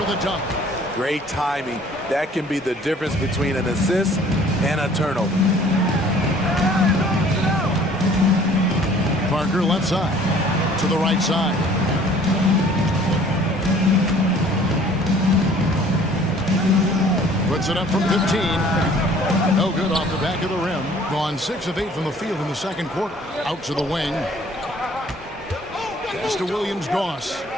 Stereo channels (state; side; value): normal; both; correlation 0.54